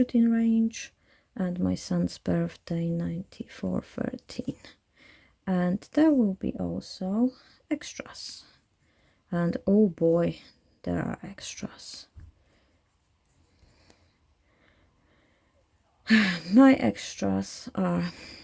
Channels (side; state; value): both; identical; correlation 1.00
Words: range, and my son's birthday 9413. And there will be also extras. And oh boy, there are extras. My extras are